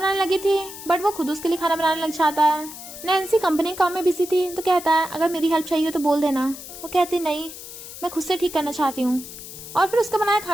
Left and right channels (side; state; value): left; noise; hiss, 13 dB below the sound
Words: लगी थी बट वो खुद उसके लिए खाना बनाने लग जाता है। नैन्सी कंपनी काम में बिजी थी तो कहता है अगर मेरी हेल्प चाहिए तो बोल देना। वो कहती नहीं, मैं खुद से ठीक करना चाहती हूँ। और फिर उसका बनाया